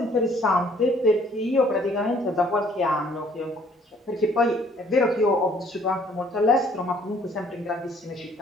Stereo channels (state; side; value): normal; both; correlation 0.60